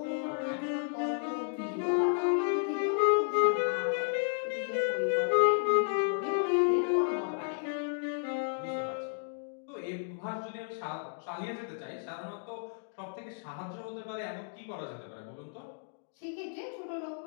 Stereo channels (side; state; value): right; silent; digital silence